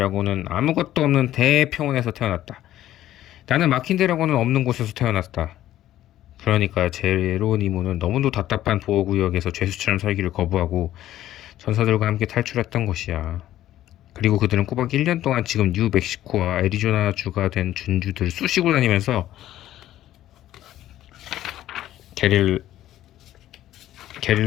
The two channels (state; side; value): quieter; right; 13.2 dB